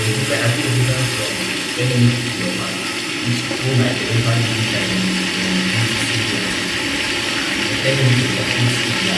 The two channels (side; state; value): both; identical; correlation 1.00